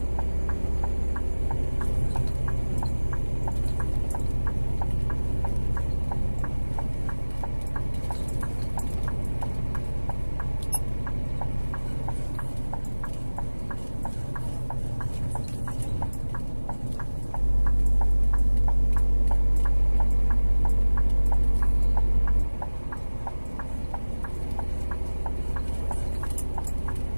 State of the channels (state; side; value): inverted; both; correlation -1.00